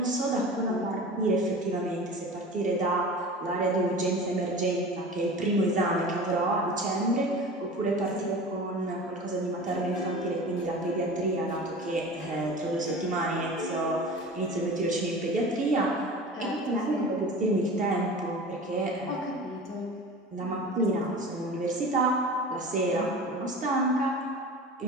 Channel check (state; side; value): normal; both; correlation 0.36